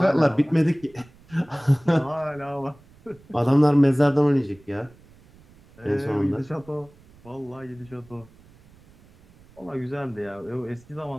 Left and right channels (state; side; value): noise; right; rumble, 26 dB below the sound